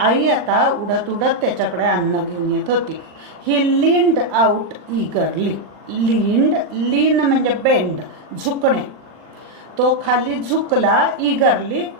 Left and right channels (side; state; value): left; late; 40 ms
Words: आता उडत उडत त्याच्याकडे अन्न घेऊन येत होती. ही लीन्ड आउट ईगरली. लीन्ड, लीन म्हणजे बेंड, झुकणे. तो खाली झुकला, ईगरली,